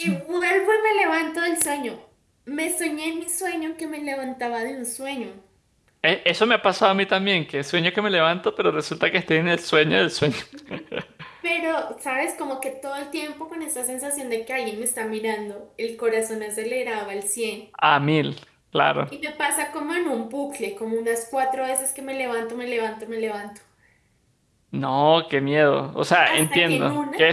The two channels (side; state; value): both; identical; correlation 1.00